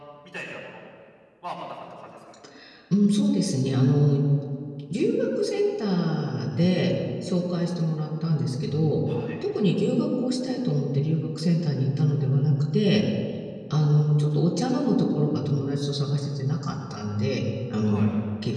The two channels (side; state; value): both; identical; correlation 1.00